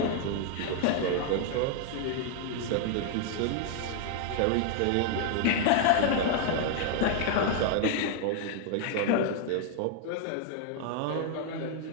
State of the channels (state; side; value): different; both; correlation 0.00